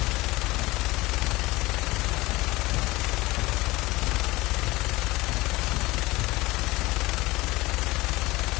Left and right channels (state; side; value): quieter; right; 20.6 dB